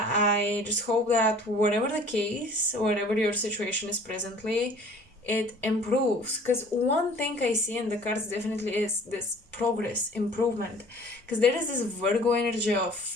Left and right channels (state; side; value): normal; both; correlation 0.50